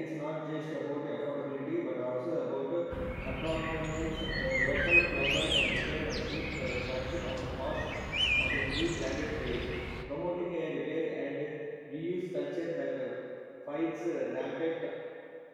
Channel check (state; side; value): identical; both; correlation 1.00